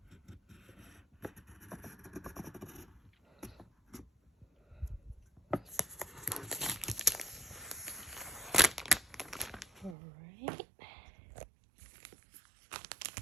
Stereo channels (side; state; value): left; drops out; at 10.0 s